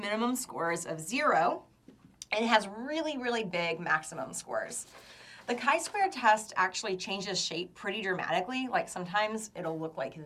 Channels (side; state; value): both; identical; correlation 1.00